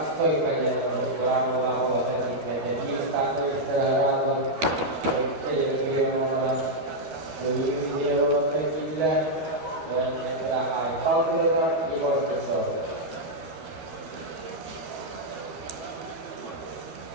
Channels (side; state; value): left; late; 12 ms